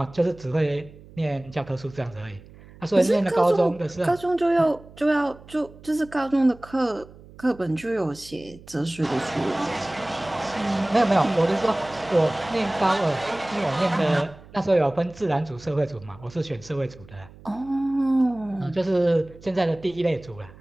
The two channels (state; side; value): noise; right; hum, 21 dB below the sound